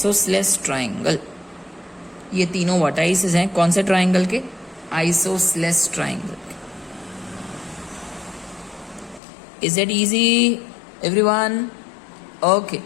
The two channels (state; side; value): drops out; right; at 9.2 s